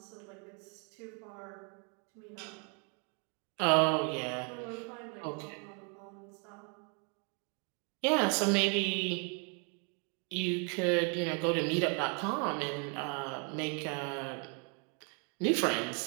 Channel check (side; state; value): left; quieter; 37.2 dB